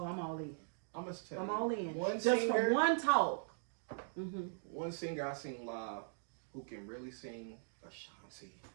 I'm all in. I'm all in. Just from one talk. One singer I seen live who can really sing, Ashanti.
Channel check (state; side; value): silent; left; digital silence